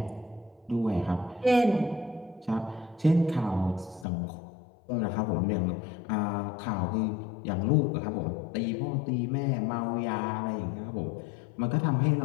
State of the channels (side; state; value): right; drops out; at 4.0 s